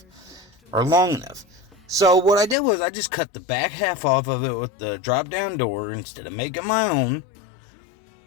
or long enough. So what I did was I just cut the back half off of it with the drop down door instead of making my own,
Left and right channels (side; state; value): right; drops out; at 2.6 s